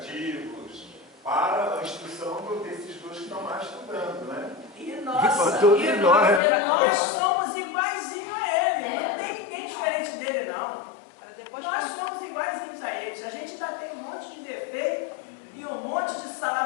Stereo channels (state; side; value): drops out; right; at 6.4 s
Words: para a instrução desses dois que estão lá estudando, né? E Para nossa, todos e nós, nós somos iguaizinhos a ele. Não tem ninguém diferente dele, não. Para depois Nós somos iguaizinhos a eles. A gente ainda tem um monte de defeito e um monte de